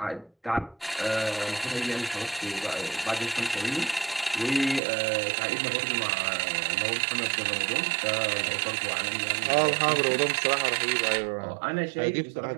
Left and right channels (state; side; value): drops out; left; at 4.8 s